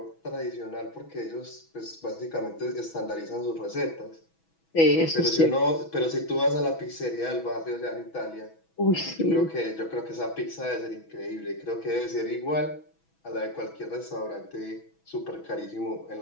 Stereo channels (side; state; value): right; late; 6.1 ms